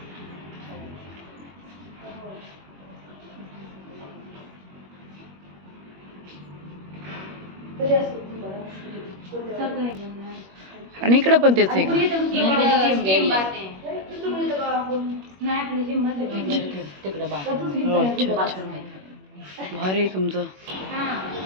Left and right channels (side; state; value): left; late; 21 ms